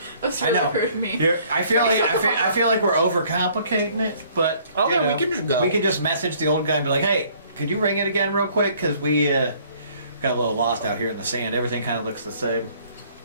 That's I really know. rude of me. I feel like we're overcomplicating it, but Okay, you know, we can just go. We can just message the old guy and be like, "Hey, could you ring it again real quick? Because we got a little lost out here in the sand. Everything kind of looks the same."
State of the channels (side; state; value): both; inverted; correlation -0.59